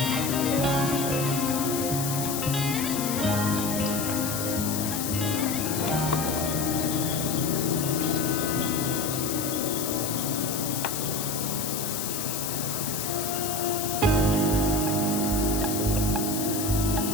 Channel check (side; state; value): left; noise; hiss, 3 dB below the sound